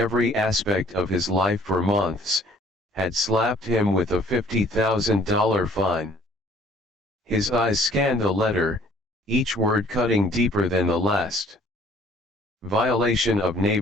aspect of his life for months, had slapped him with a $50,000 fine. His eyes scanned the letter, each word cutting deeper than the last. Violation of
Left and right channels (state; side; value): normal; both; correlation 0.55